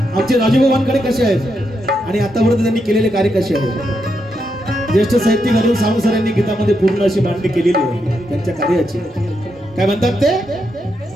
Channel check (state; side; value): normal; both; correlation 0.82